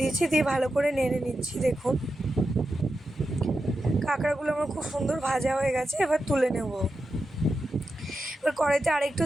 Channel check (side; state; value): both; normal; correlation 0.89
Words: দিয়েছি, দিয়ে ভালো করে নেড়ে নিচ্ছি। দেখুন কাঁকড়াগুলো আমার খুব সুন্দর ভাজা হয়ে গেছে, এবার তুলে নেব। এবার কড়াইতে আরেকটু